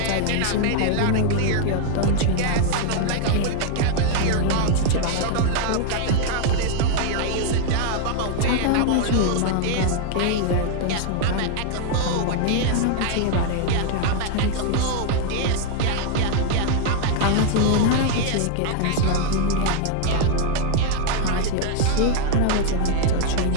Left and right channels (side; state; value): both; different; correlation 0.00